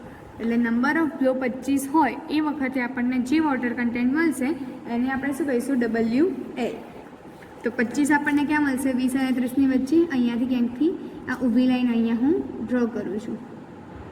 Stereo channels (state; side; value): identical; both; correlation 1.00